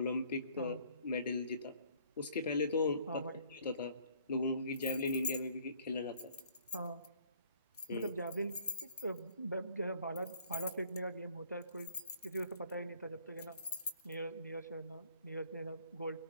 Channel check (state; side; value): inverted; both; correlation -0.59